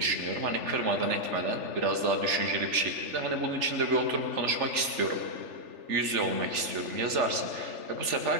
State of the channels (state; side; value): late; left; 3.4 ms